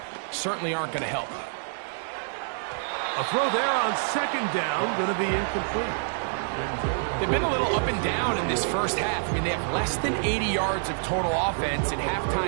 certainly aren't going to help. A throw there on second down, going to be incomplete. They've been a little up and down in this first half. I mean, they have less than 80 yards of total offense and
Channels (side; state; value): left; silent; 60 dB below the other